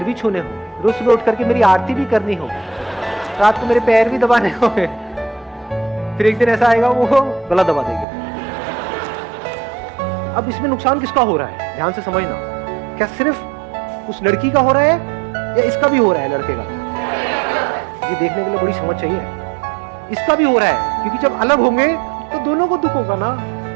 भी छूने होंगे, रोज सुबह उठ करके मेरी आरती भी करनी होगी, रात को मेरे पैर भी दबाने होंगे, फिर एक दिन ऐसा आएगा वो गला दबा देंगे। अब इसमें नुकसान किसका हो रहा है? ध्यान से समझना। क्या सिर्फ उस लड़की का हो रहा है या इसका भी हो रहा है? लड़के का, ये देखने के लिए बड़ी समझ चाहिए। इसका भी हो रहा है, क्योंकि जब अलग होंगे तो दोनों को दुख होगा ना।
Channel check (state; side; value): drops out; left; at 8.1 s